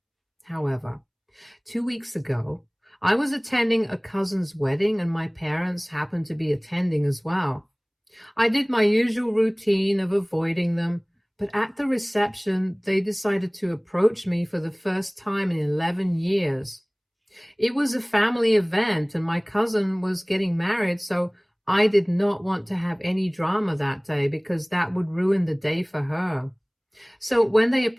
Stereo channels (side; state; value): both; identical; correlation 1.00